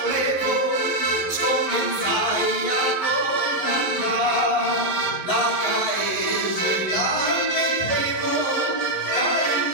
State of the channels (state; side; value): late; right; 11 ms